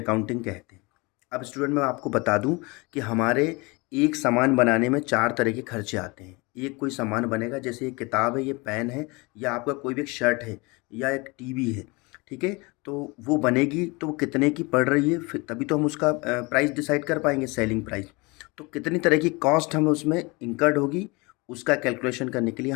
कहते हैं। अब स्टूडेंट मैं आपको बता दूं कि हमारे एक सामान बनाने में चार तरह के खर्चे आते हैं। एक कोई सामान बनेगा, जैसे ये किताब है, ये पेन है, या आपका कोई भी एक शर्ट है, या एक टीवी है। ठीक है, तो वो बनेगी तो वो कितने की पड़ रही है, फिर तभी तो हम उसका प्राइस डिसाइड कर पाएंगे, सेलिंग प्राइस। तो कितनी तरह की कॉस्ट हमें उसमें इंकर्ड होगी उसका कैलकुलेशन करने के लिए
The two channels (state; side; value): quieter; right; 26.3 dB